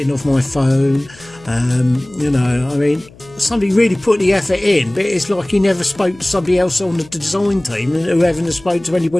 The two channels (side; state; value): left; noise; hum, 24 dB below the sound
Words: of my phone. You know, I mean, somebody really put the effort in, but it's like he never spoke to somebody else on the design team, and whoever spoke to